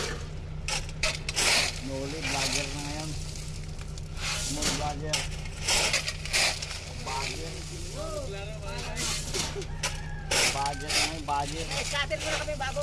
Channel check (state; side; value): identical; both; correlation 1.00